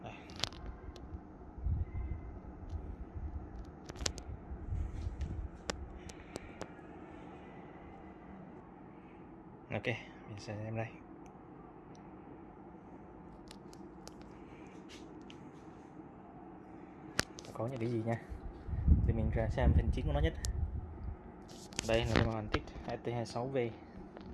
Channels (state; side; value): identical; both; correlation 1.00